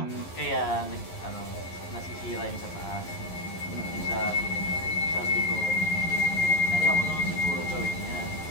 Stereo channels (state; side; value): late; right; 11 ms